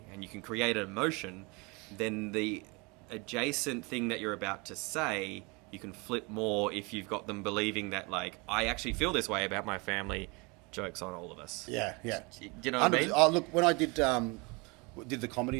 and you can create an emotion, then the adjacent thing that you're about to say, you can flip more if you've got them believing that, I actually feel this way about my family. Joke's on all of us. Yeah. Do you know what I mean? Oh, look, when I did the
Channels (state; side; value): quieter; left; 28.2 dB